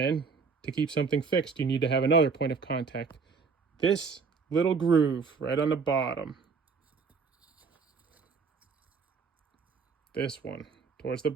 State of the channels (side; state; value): left; quieter; 5.2 dB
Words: to keep something fixed, you need to have another point of contact. This little groove right on the bottom. This one towards the